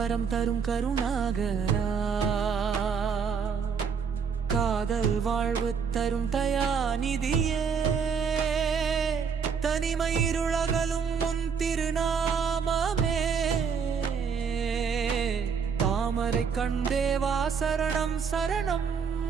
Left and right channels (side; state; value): left; quieter; 6.3 dB